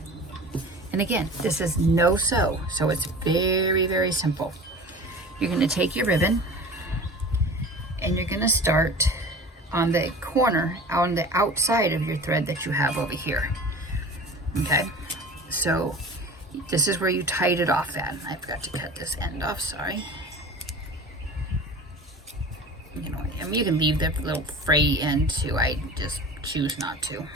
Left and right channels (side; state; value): both; normal; correlation 0.38